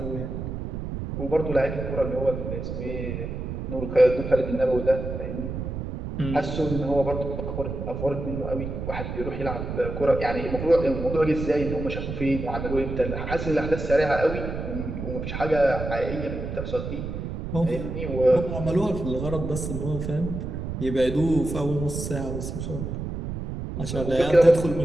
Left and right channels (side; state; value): right; noise; rumble, 5 dB below the sound